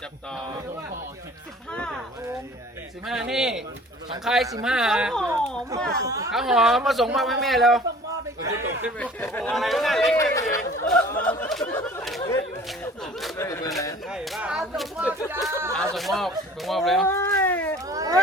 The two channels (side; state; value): both; normal; correlation 0.48